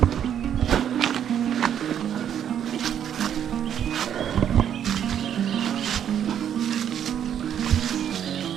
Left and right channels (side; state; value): left; quieter; 9.4 dB